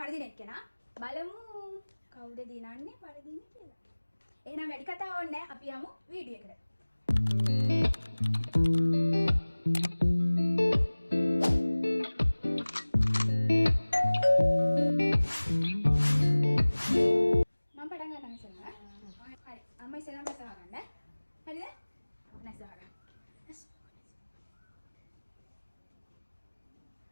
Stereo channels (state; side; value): inverted; both; correlation -1.00